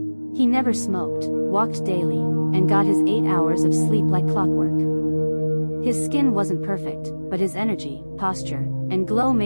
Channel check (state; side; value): inverted; both; correlation -1.00